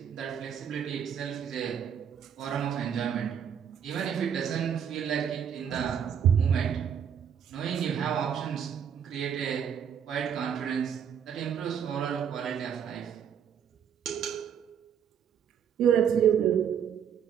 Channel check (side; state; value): left; quieter; 8.2 dB